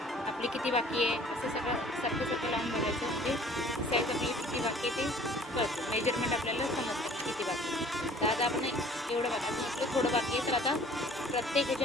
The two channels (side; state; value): both; normal; correlation 0.51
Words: आपली किती बाकी आहे असं सारखं लावून बघायचं. म्हणजे साईज आपली किती बाकी आहे ते कळतं. मेजरमेंट आपल्याला समजतं किती बाकी आहे. तर आता आपण एवढं बघा, अजून आपलं थोडं बाकी आहे. तर आता प्रत्येक